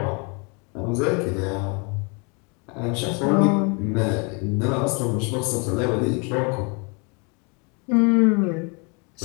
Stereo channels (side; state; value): right; quieter; 33.4 dB